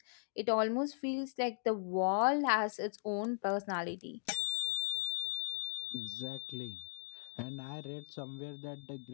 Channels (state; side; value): silent; right; digital silence